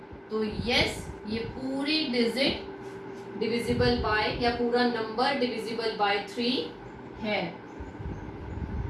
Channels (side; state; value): both; identical; correlation 1.00